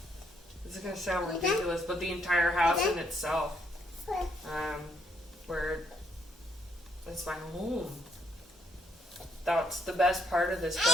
this is gonna sound ridiculous, but the entire house in itself, where it's my home. That's the best part of this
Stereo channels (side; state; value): both; normal; correlation 0.71